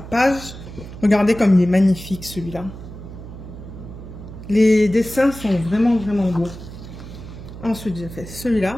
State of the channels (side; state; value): right; noise; hum, 13 dB below the sound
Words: Regardez comme il est magnifique celui-là. Les dessins sont vraiment, vraiment beaux. Ensuite, j'ai fait celui-là.